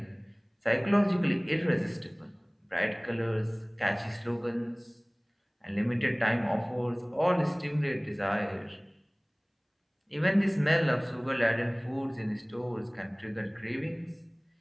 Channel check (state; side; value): identical; both; correlation 1.00